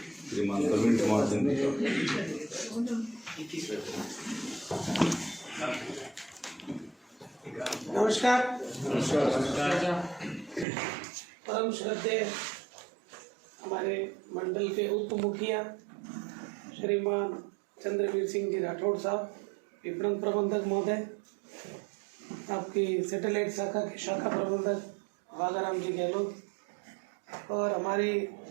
श्रीमान प्रवीण कुमार सिंह। नमस्कार। परम श्रद्धेय हमारे मंडल के उप मुखिया श्रीमान चंद्रवीर सिंह जी राठौड़ साहब, विपणन प्रबंधक महोदय, आपकी सैटेलाइट शाखा के शाखा प्रबंधक वागाराम जी गहलोत, और हमारी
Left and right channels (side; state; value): left; drops out; at 10.7 s